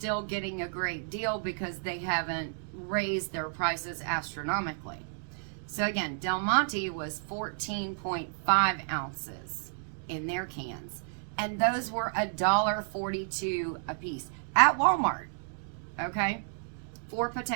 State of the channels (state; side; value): silent; left; digital silence